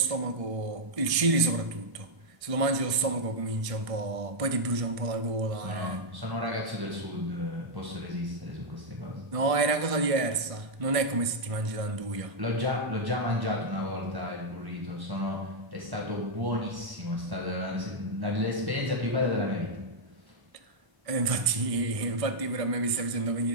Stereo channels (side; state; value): left; late; 1.5 ms